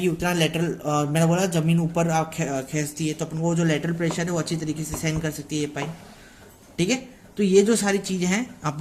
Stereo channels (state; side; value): identical; both; correlation 1.00